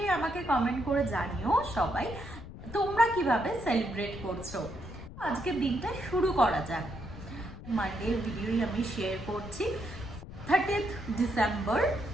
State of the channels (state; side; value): noise; left; rumble, 13 dB below the sound